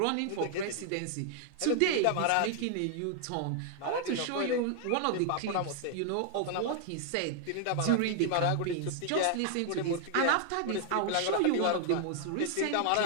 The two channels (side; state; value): both; different; correlation 0.00